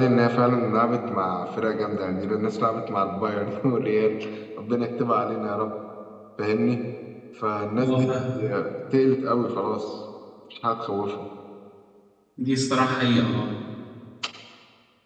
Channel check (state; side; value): identical; both; correlation 1.00